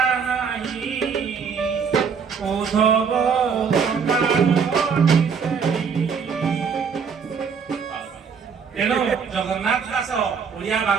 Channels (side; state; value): left; quieter; 6.2 dB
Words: ନାହିଁ ଉଦ୍ଧବ ତେଣୁ ଜଗନ୍ନାଥ ଦାସ ଓଡ଼ିଆ